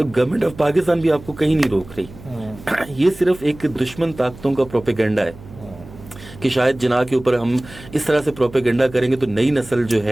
گورنمنٹ آف پاکستان بھی آپ کو کہیں نہیں روک رہی. یہ صرف ایک دشمن طاقتوں کا پروپیگنڈا ہے کہ شاید جناح کے اوپر ہم اس طرح سے پروپیگنڈا کریں گے تو نئی نسل جو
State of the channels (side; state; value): right; noise; hum, 18 dB below the sound